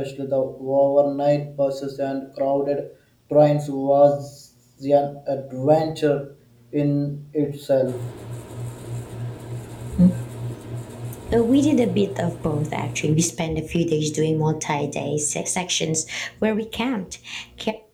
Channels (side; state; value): both; identical; correlation 1.00